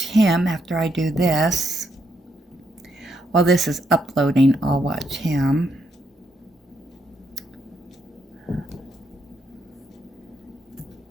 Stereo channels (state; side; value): normal; both; correlation 0.77